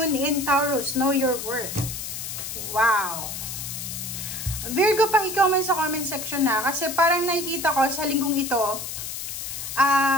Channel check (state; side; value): noise; left; hiss, 6 dB below the sound